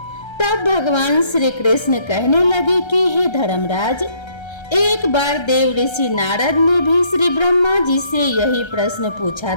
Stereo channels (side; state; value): right; late; 1.3 ms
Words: तब भगवान श्री कृष्ण कहने लगे कि हे धर्मराज, एक बार देव ऋषि नारद ने भी श्री ब्रह्मा जी से यही प्रश्न पूछा